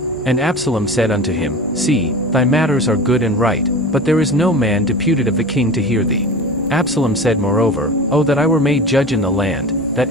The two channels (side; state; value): both; normal; correlation 0.33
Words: And Absalom said unto him, See, thy matters are good and right, but there is no man deputed of the king to hear thee. Absalom said moreover, O that I were made judge in the land,